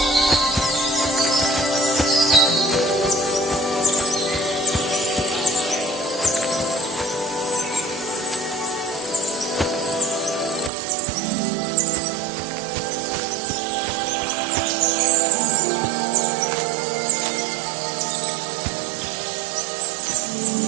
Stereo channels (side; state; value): left; drops out; at 10.7 s